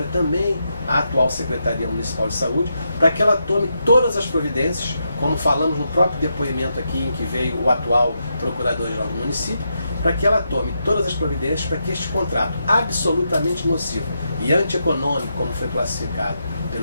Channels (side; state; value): both; inverted; correlation -0.83